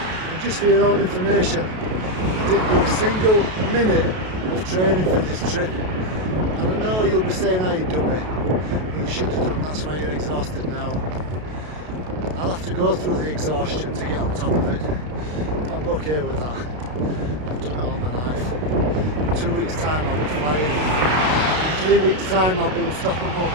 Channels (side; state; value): left; late; 32 ms